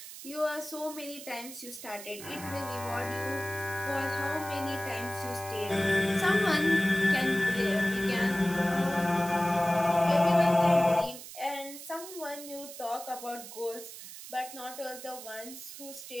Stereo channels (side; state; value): right; noise; hiss, 13 dB below the sound